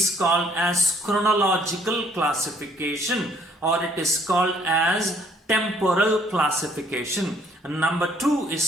called as chronological classification, or it is called as temporal classification. And number two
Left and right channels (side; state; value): both; normal; correlation 0.63